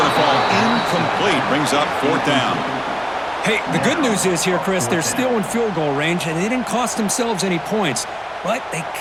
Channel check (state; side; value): identical; both; correlation 1.00